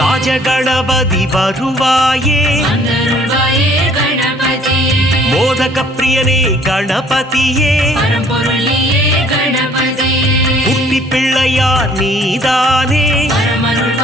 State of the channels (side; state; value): both; normal; correlation 0.57